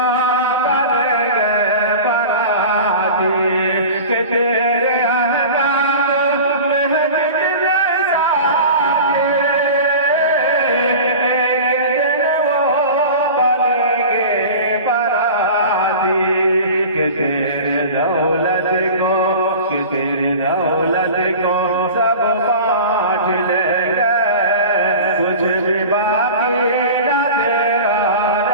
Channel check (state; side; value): inverted; both; correlation -0.36